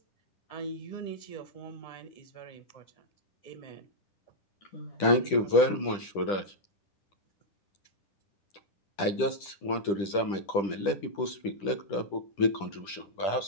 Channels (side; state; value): right; late; 10 ms